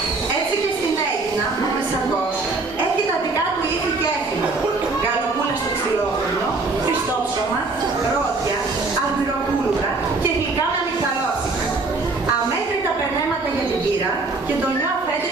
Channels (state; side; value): quieter; left; 3.6 dB